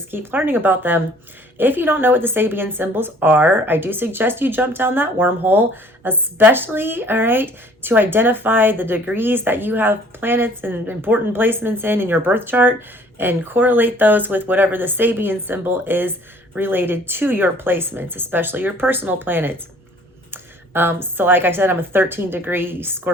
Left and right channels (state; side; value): normal; both; correlation 0.55